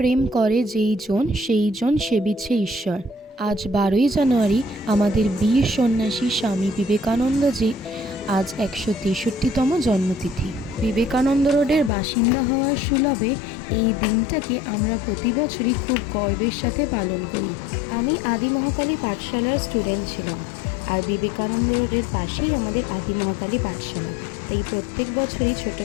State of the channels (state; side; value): drops out; right; at 11.9 s